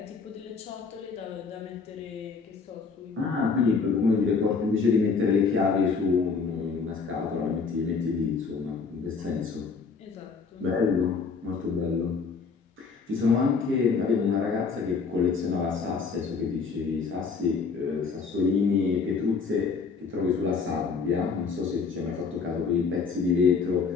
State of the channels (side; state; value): right; quieter; 5.1 dB